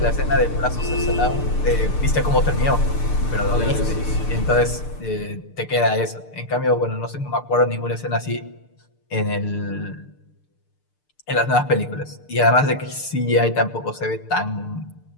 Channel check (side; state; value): right; late; 6.7 ms